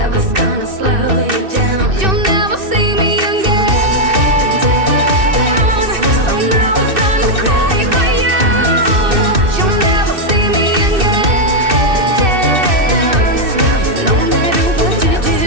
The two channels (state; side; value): late; left; 2.6 ms